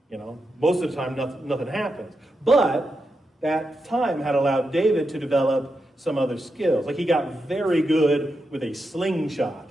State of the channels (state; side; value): normal; both; correlation 0.87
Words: You know, most of the time nothing happens. But that time had allowed David to develop some other skills. Like he got very good with a